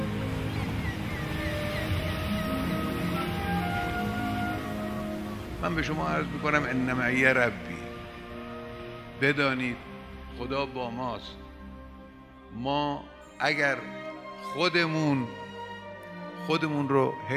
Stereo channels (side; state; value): both; identical; correlation 1.00